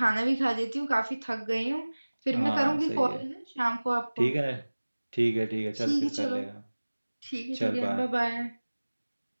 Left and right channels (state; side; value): inverted; both; correlation -1.00